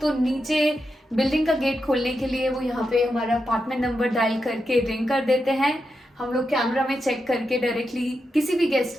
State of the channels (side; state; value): both; normal; correlation 0.87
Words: तो नीचे बिल्डिंग का गेट खोलने के लिए वो यहाँ पे हमारा अपार्टमेंट नंबर डायल करके रिंग कर देते हैं। हम लोग कैमरा में चेक करके डायरेक्टली किसी भी